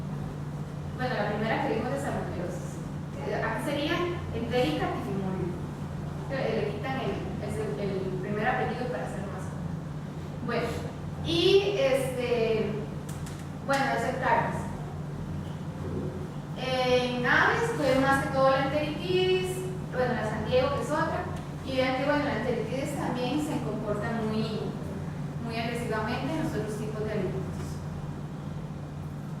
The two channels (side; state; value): both; identical; correlation 1.00